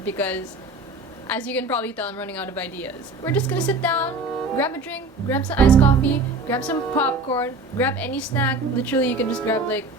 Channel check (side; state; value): left; quieter; 3.2 dB